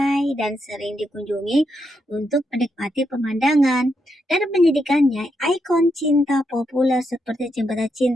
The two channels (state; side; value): normal; both; correlation 0.81